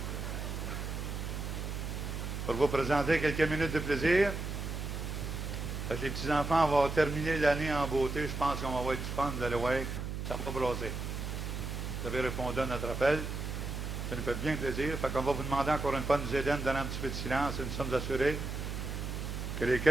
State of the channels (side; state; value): right; noise; hum, 4 dB below the sound